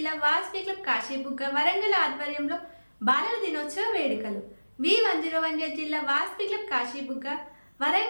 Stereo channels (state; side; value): inverted; both; correlation -1.00